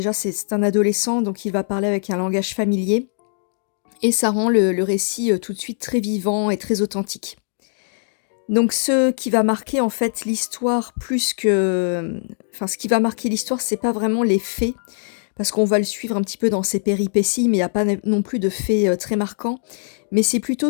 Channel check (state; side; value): silent; right; digital silence